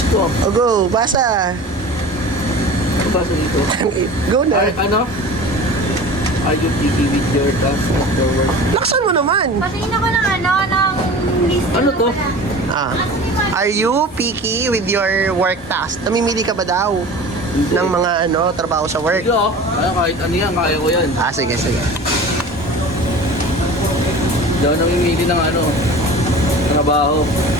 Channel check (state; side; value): normal; both; correlation 0.38